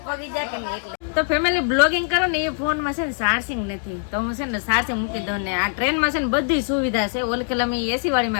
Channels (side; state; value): right; silent; digital silence